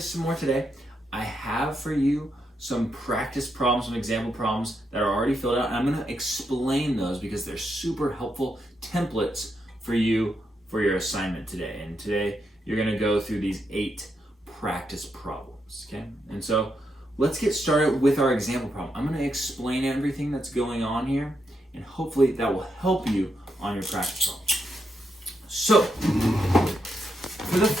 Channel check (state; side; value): normal; both; correlation 0.82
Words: some more today. I have for you some practice problems, some example problems that are already filled out, and I'm going to explain those because they're super helpful templates for you for your assignment today. And today you're going to go through these 8 practice problems, okay? And so let's get started with our example problem. I'm going to explain everything that's going on here, and hopefully that will help you on your practice problem. So, for the